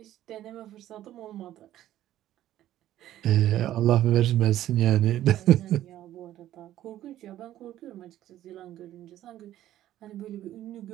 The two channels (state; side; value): quieter; left; 13.0 dB